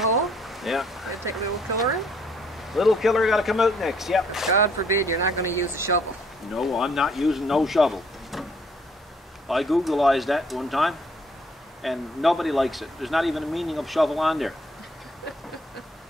Yeah. Gonna take a little killer in? Little killer got to come out next. Yep. God forbid you're not going to use a shovel. No, I'm not using no shovel. I Googleized that one time, and nobody likes it. There's not even a meaning of shovel on there.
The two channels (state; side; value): normal; both; correlation 0.64